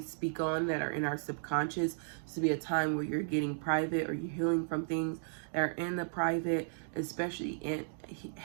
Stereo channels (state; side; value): silent; left; digital silence